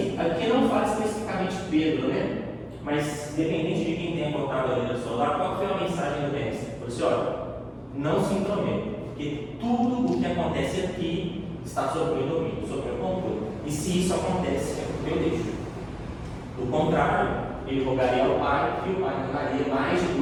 aqui não fala especificamente Pedro, né? Mas dependente de quem tenha colocado ali no celular, qual foi a mensagem do mestre? Ele falou assim: olha, não se intrometa, porque tudo o que acontece aqui está sob o meu domínio, sob o meu controle. E se isso acontece, é porque eu deixo. Do contrário, ele rogaria ao Pai e o Pai mandaria mais de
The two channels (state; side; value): identical; both; correlation 1.00